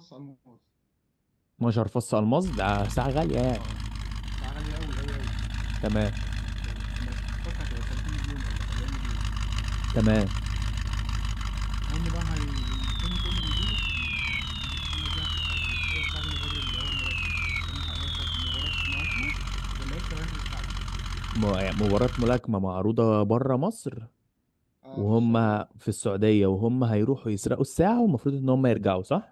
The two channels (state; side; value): identical; both; correlation 1.00